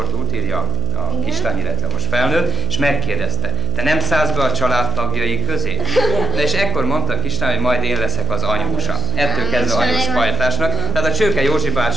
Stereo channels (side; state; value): right; noise; hum, 2 dB below the sound